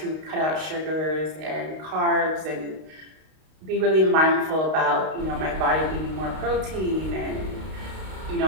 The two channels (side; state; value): left; late; 32 ms